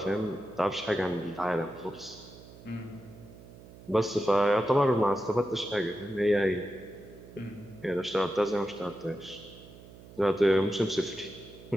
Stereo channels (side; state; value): right; noise; hum, 19 dB below the sound